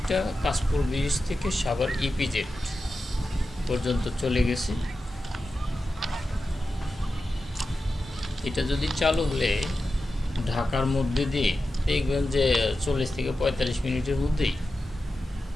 কাশপুর ব্রিজ থেকে সাভার ইপিজেড পর্যন্ত চলে গেছে। এটা যদি চালু হলে ঢাকার মধ্যে দিয়ে দেখবেন যে 40 থেকে 45 মিনিটের মধ্যেই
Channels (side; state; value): both; normal; correlation 0.92